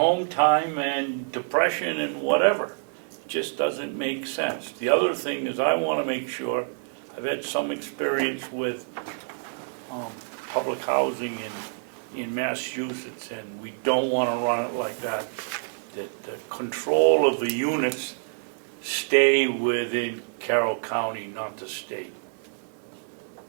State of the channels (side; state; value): left; silent; digital silence